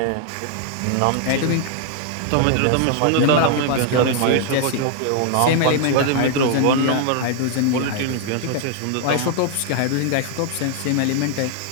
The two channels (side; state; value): both; different; correlation 0.00